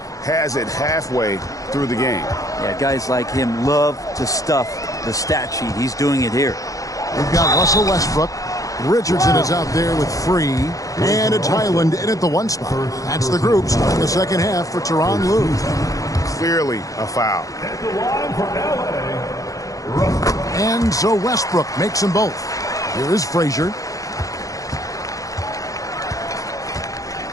has it halfway through the game. Yeah, guys like him love to stuff the stat sheet. He's doing it here. We've got Russell Westbrook. Richardson is out there with Free. And it's Highland in at the 1 spot. That's the group starting the second half for Tyronn Lue. Clearly a foul. And so Westbrook makes them both. Here is Frazier.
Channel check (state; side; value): late; right; 0.16 ms